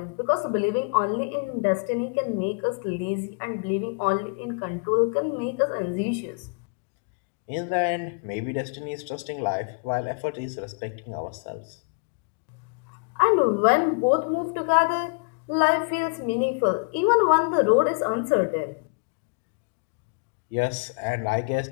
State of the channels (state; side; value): quieter; right; 34.9 dB